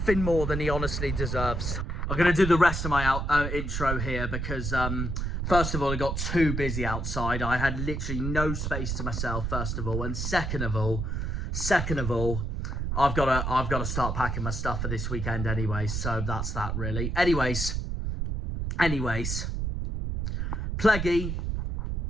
more than he honestly deserves. I'm going to do the rest of my intro here because, first of all, it got too busy outside. I had literally no space to myself, first of all. And second of all, I've got to start packing my stuff for this weekend anyway. So that's that, really. Anyways. Pleggy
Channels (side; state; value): right; noise; rumble, 2 dB below the sound